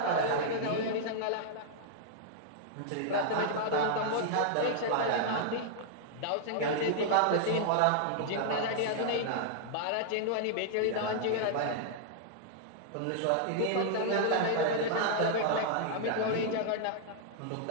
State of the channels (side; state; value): both; different; correlation -0.01